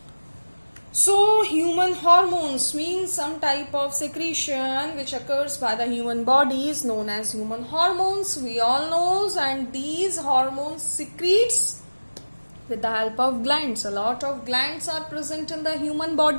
So human hormones means some type of secretion which occurs by the human body is known as human hormones, we all knows, and these hormones secretes with the help of glands. A lot of glands are present in the human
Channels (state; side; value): inverted; both; correlation -1.00